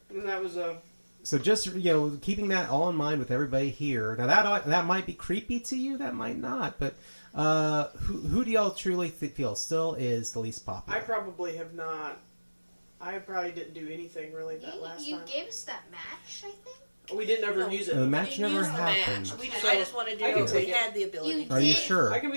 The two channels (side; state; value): both; inverted; correlation -1.00